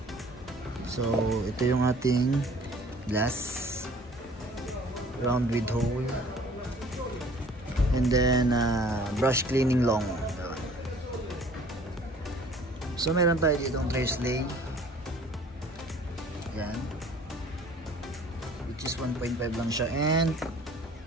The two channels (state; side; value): normal; both; correlation 0.52